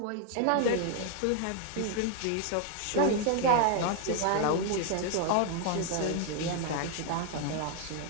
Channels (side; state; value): both; different; correlation 0.00